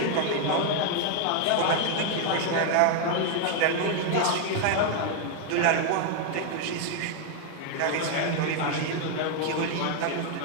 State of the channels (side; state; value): both; different; correlation 0.00